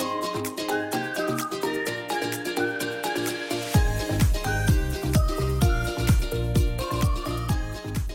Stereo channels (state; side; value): identical; both; correlation 1.00